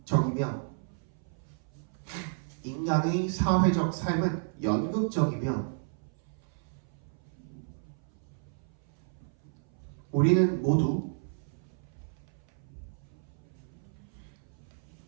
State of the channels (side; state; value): left; silent; 56 dB below the other